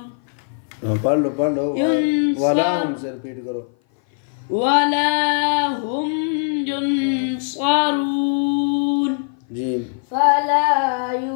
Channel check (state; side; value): silent; right; 57 dB below the other